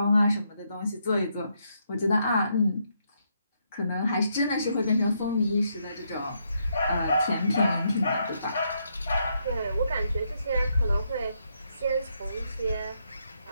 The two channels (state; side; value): inverted; both; correlation -0.77